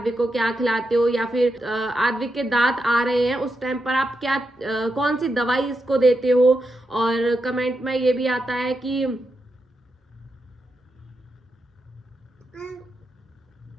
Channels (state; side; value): normal; both; correlation 0.85